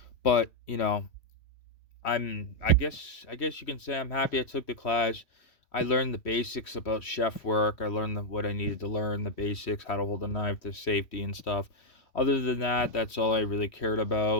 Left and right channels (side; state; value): right; late; 3.1 ms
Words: but I guess you can say I'm happy I took the class. I learned the basics about chef work. I learned what I needed to learn, the basics, how to hold a knife, the safety and stuff. Other than that, that's all I really cared